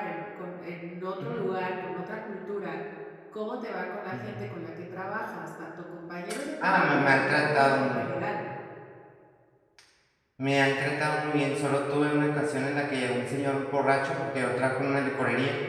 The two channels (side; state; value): both; identical; correlation 1.00